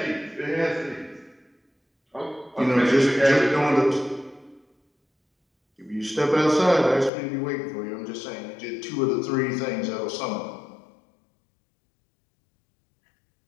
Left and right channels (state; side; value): drops out; right; at 7.1 s